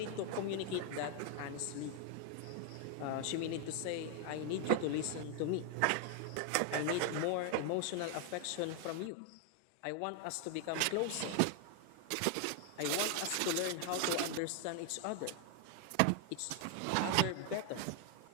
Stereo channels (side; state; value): both; different; correlation 0.01